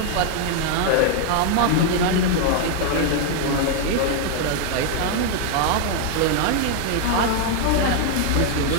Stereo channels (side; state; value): both; different; correlation 0.00